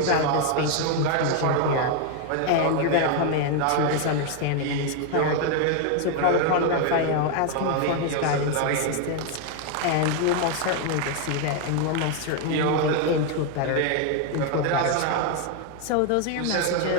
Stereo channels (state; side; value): different; both; correlation 0.01